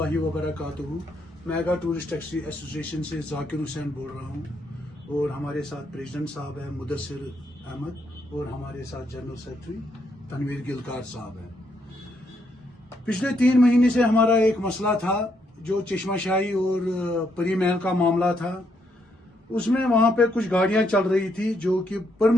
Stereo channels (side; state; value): both; normal; correlation 0.75